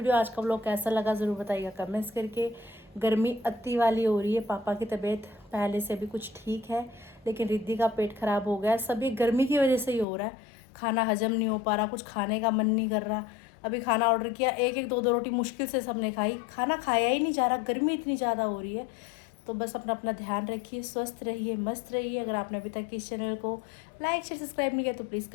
आज का व्लॉग कैसा लगा ज़रूर बताइएगा कमेंट्स करके। गर्मी अति वाली हो रही है। पापा की तबीयत पहले से भी कुछ ठीक है, लेकिन रिद्धि का पेट खराब हो गया। सभी गर्मी की वजह से ही हो रहा है। खाना हजम नहीं हो पा रहा, कुछ खाने का मन नहीं कर रहा। अभी खाना ऑर्डर किया, एक दो रोटी मुश्किल से सबने खाई। खाना खाया ही नहीं जा रहा, गर्मी इतनी ज़्यादा हो रही है। तो बस अपना ध्यान रखिए, स्वस्थ रहिए, मस्त रहिए। अगर आपने अभी तक इस चैनल को लाइक शेयर सब्सक्राइब नहीं किया तो प्लीज़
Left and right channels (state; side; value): drops out; right; at 10.1 s